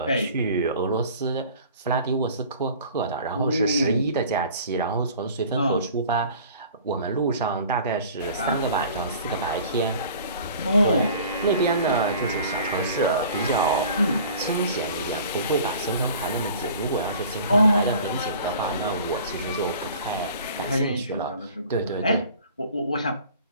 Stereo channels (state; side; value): inverted; both; correlation -0.46